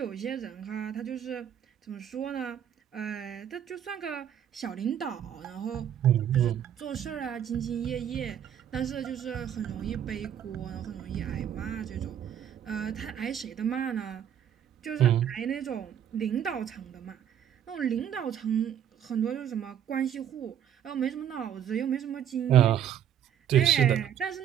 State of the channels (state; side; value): quieter; left; 9.6 dB